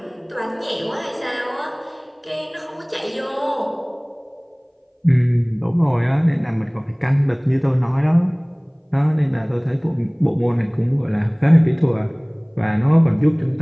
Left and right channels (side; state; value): both; identical; correlation 1.00